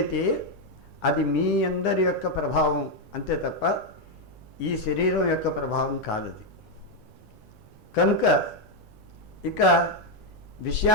అది మీ అందరి యొక్క ప్రభావం అంతే తప్ప ఈ శరీరం యొక్క ప్రభావం కాదది. కనుక ఇక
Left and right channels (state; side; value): normal; both; correlation 0.02